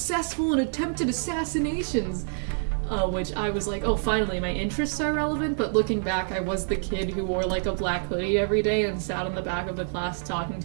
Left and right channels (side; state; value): left; silent; digital silence